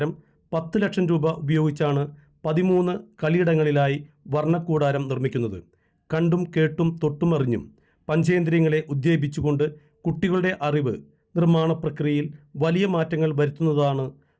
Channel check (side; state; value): both; identical; correlation 1.00